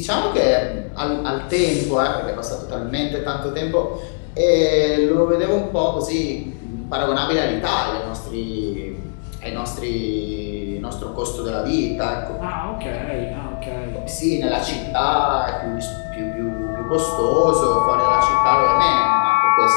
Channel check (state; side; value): silent; right; digital silence